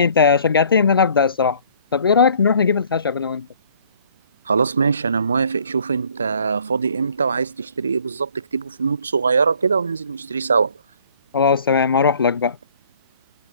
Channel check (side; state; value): both; inverted; correlation -0.56